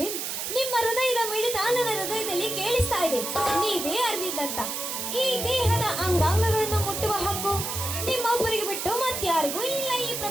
ನಿಮ್ಮ ಹೃದಯದ ಮಿಡಿತ ನನ್ನ ಹೃದಯದಲ್ಲಿ ಕೇಳಿಸ್ತಾ ಇದೆ. ನೀವೇ ಅರವಿಂದ್ ಅಂತ. ಈ ದೇಹದ ಅಂಗಾಂಗಗಳನ್ನು ಮುಟ್ಟುವ ಹಕ್ಕು ನಿಮ್ಮೊಬ್ಬರಿಗೆ ಬಿಟ್ಟು ಮತ್ತಾರಿಗೂ ಇಲ್ಲ ಈ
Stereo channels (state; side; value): noise; right; hiss, 4 dB below the sound